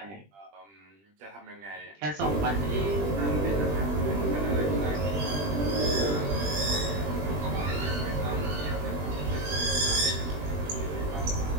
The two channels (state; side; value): late; left; 20 ms